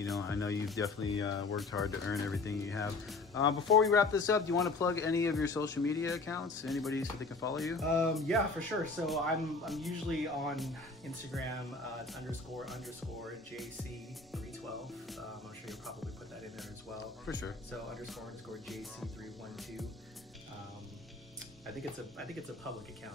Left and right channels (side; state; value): right; quieter; 3.7 dB